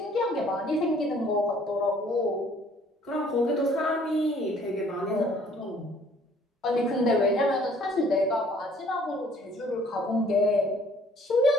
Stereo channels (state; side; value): normal; both; correlation 0.58